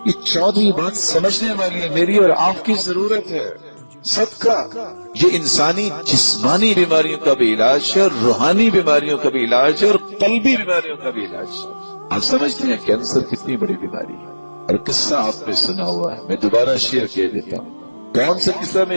یہ 14ویں بات سمجھنے والی ہے، میری اور آپ کی ضرورت ہے. صدقہ یہ انسانی جسمانی بیماریوں کا بھی علاج ہے، اور روحانی بیماریوں کا بھی علاج ہے، اور قلبی بیماریوں کا بھی علاج ہے. آپ سمجھتے ہیں کینسر کتنی بڑی بیماری ہے، اور قصہ آپ نے سنا ہوا ہے، میں دوبارہ شیئر کر دیتا ہوں. کون سا قصہ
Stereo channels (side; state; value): both; inverted; correlation -1.00